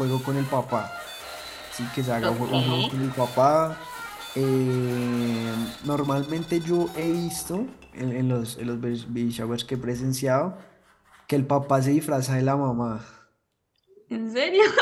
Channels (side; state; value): both; identical; correlation 1.00